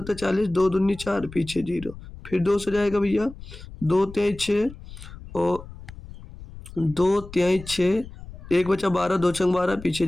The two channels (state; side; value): noise; left; rumble, 15 dB below the sound